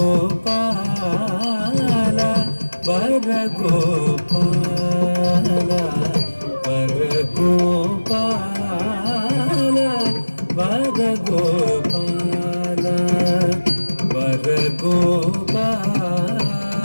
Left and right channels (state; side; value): inverted; both; correlation -1.00